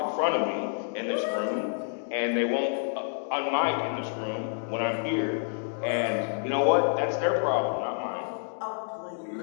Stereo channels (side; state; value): right; silent; digital silence